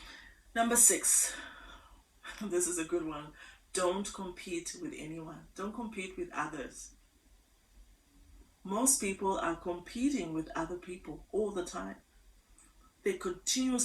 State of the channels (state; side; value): identical; both; correlation 1.00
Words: Number 6, this is a good one. Don't compete with anyone. Don't compete with others. Most people are competing with other people all the time. They